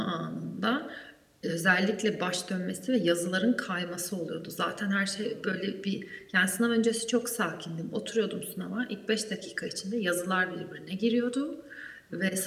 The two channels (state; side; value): identical; both; correlation 1.00